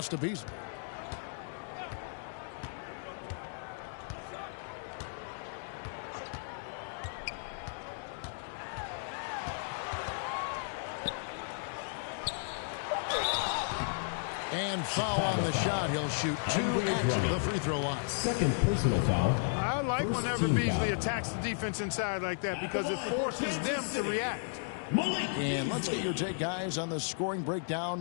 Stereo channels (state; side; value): silent; right; digital silence